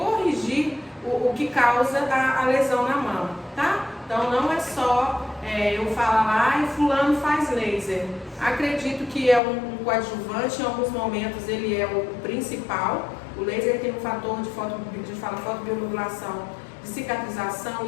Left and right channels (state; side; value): drops out; right; at 9.4 s